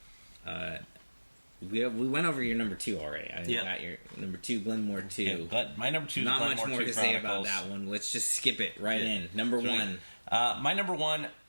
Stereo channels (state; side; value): inverted; both; correlation -1.00